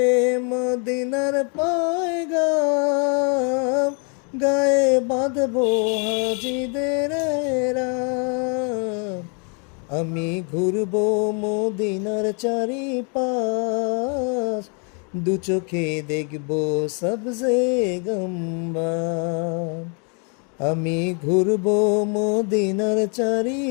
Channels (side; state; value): right; quieter; 38.0 dB